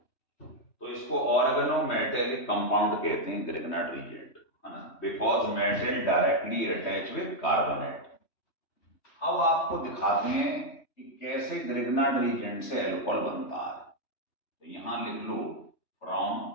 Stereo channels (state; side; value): late; right; 3.1 ms